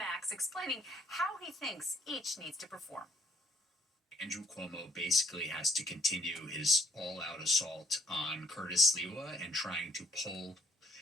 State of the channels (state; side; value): normal; both; correlation 0.65